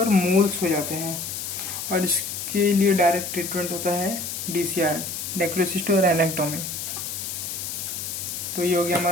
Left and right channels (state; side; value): noise; left; hiss, 5 dB below the sound